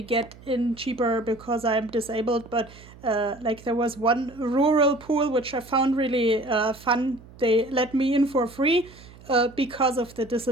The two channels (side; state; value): right; noise; hum, 21 dB below the sound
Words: get in cheaper because I'm disabled, but like there was one rural pool which I found really fun. They let me in for free because of the